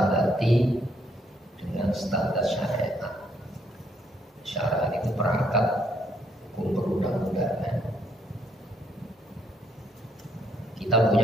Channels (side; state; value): both; normal; correlation 0.70